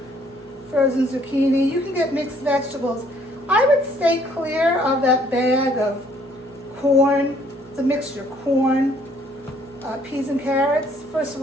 frozen zucchini. You can get mixed vegetables. I would stay clear of that bag of corn. It's a mixture, corn, peas and carrots. First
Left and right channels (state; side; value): normal; both; correlation 0.63